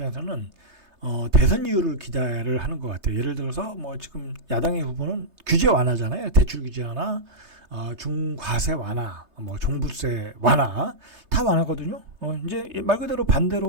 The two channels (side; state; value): left; late; 3.3 ms